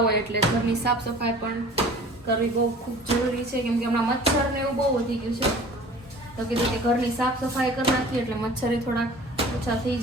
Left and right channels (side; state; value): both; normal; correlation 0.45